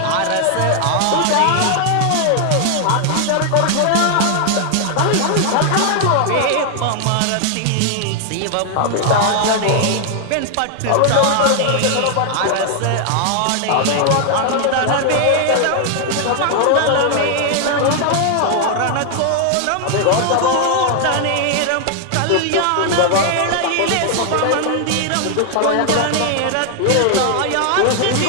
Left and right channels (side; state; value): both; different; correlation 0.00